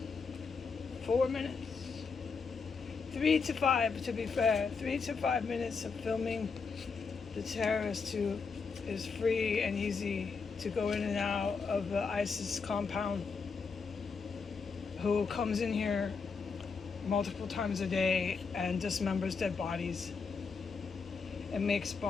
4 minutes, 3 to 5 to be fair, 3 to 5 minutes of filming the terrorist who is free and easy to go in and out of the ISIS compound, who comes in here multiple times a day and dismembers dead bodies and makes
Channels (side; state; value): right; quieter; 5.1 dB